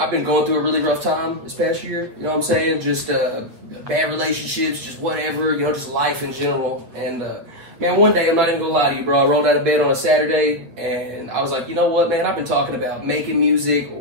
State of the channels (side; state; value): left; late; 8.0 ms